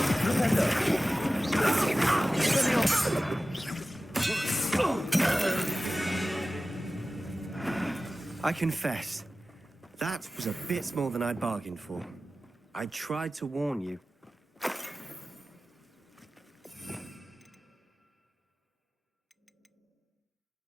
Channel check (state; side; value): normal; both; correlation 0.96